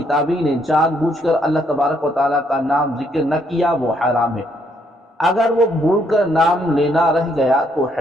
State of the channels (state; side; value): normal; both; correlation 0.71